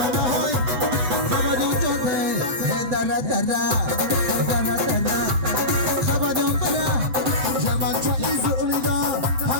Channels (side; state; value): left; late; 7.8 ms